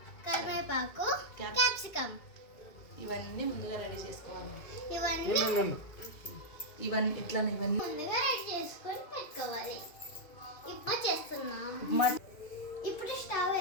కరివేపాకు, క్యాప్సికమ్. ఇవన్నీ ముందుగా రెడీ చేసుకోవాలి. ఇవన్నీ ఎట్లా ముందుగా రెడీ చేసుకొని పెట్టుకోవాలి. ఇప్పుడు చేస్తున్నాం. ఇప్పుడు స్టవ్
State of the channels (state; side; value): late; right; 2.3 ms